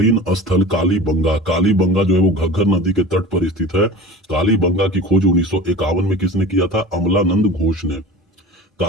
स्थल कालीबंगा जो है वो घग्गर नदी के तट पर स्थित है। कालीबंगा की खोज 1951 में किसने किया था? अमलानंद घोष ने।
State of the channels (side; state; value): both; normal; correlation 0.36